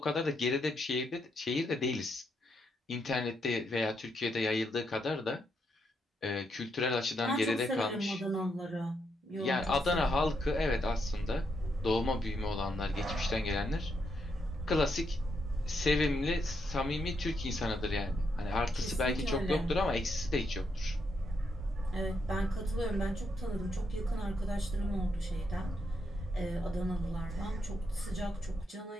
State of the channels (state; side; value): normal; both; correlation 0.79